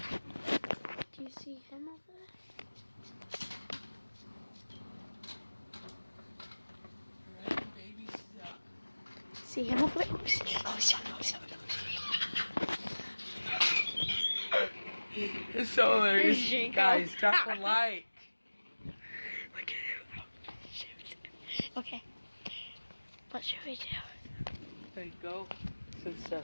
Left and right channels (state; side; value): inverted; both; correlation -1.00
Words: Do you see him over there? See him over there? It's so hilarious. Guys, drop a like. Look at him. Shoot. Okay. What should we do? There you go. To the